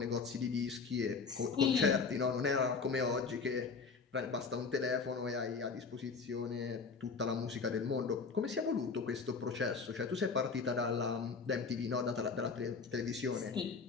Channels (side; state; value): right; quieter; 5.0 dB